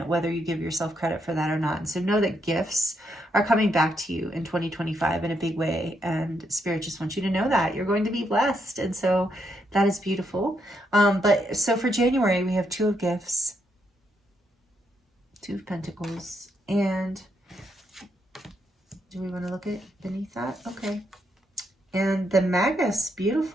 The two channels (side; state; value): both; normal; correlation 0.78